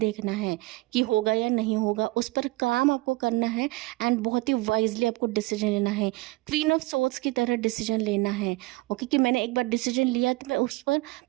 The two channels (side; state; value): left; quieter; 22.3 dB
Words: है कि होगा या नहीं होगा, उस पर काम आपको करना है एंड बहुत ही वाइजली आपको डिसीजन लेना है, क्वीन ऑफ सोर्ड्स की तरह डिसीजन लेना है। ओके, कि मैंने एक बार डिसीजन लिया तो मैं उस पर